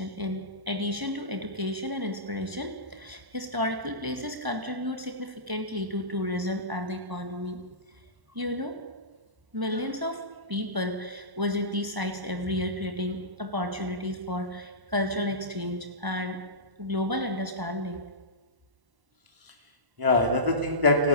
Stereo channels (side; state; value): left; late; 1.0 ms